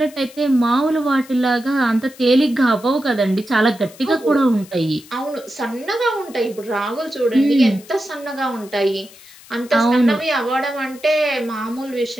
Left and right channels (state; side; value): noise; left; hiss, 22 dB below the sound